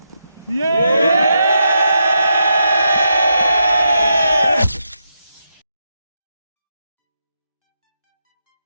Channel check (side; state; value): both; inverted; correlation -0.83